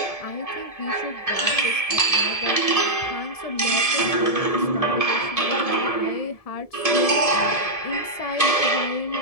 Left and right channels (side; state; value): right; late; 1.7 ms